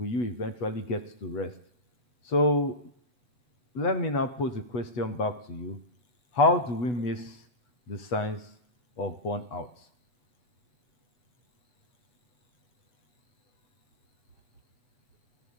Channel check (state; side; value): late; right; 8.1 ms